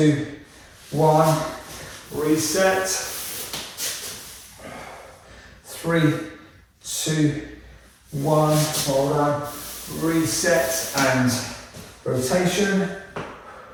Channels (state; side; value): identical; both; correlation 1.00